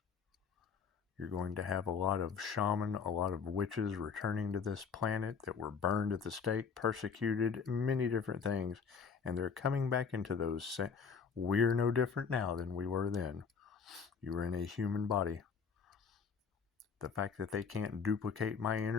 You're going to have a lot of shaman, a lot of witches returning to this planet that were burned at the stake, persecuted, many different things. And they're coming back into those. We're no different now than we were then. You were in a human body. The fact that they can't duplicate my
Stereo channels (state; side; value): quieter; right; 6.0 dB